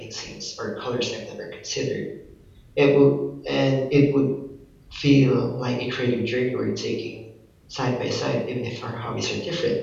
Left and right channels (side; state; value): both; identical; correlation 1.00